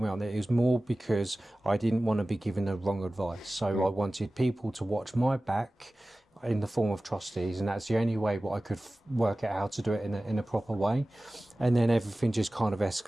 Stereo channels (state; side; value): normal; both; correlation 0.97